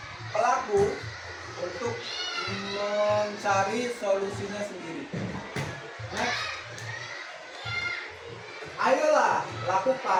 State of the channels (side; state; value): both; identical; correlation 1.00